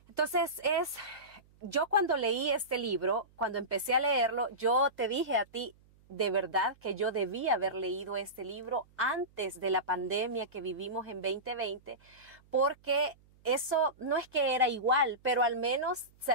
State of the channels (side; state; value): right; noise; hum, 30 dB below the sound